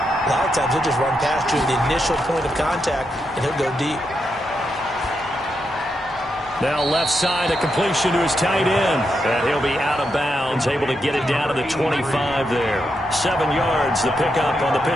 lot of times he'll just run past you at the initial point of contact, and he'll go deep. Now left side, a completion to his tight end. And he'll be out of bounds, able to get it down to the 25 there. 7 yards, the pickup on the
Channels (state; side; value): normal; both; correlation 0.84